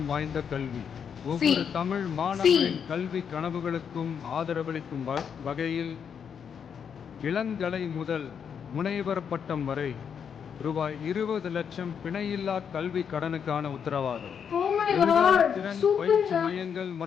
வாய்ந்த கல்வி. ஒவ்வொரு தமிழ் மாணவரின் கல்வி கனவுகளுக்கும் ஆதரவளிக்கும் வகையில் இளங்கலை முதல் முனைவர் பட்டம் வரை ரூபாய் 20 லட்சம் பிணையில்லா கல்வி கடனுக்கான உத்தரவாதம். திறன் பயிற்சி மையங்கள்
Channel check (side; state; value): right; quieter; 7.3 dB